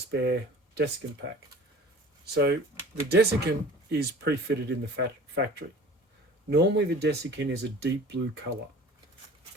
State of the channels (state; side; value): normal; both; correlation 0.44